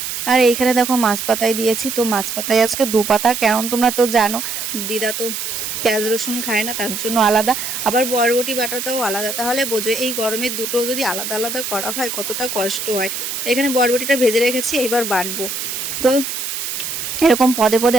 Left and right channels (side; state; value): right; noise; hiss, 4 dB below the sound